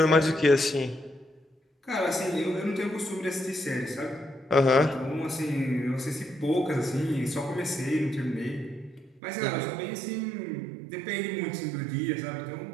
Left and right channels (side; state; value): left; drops out; at 9.2 s